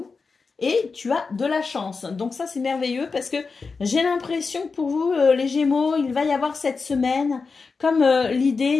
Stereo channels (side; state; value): right; quieter; 4.6 dB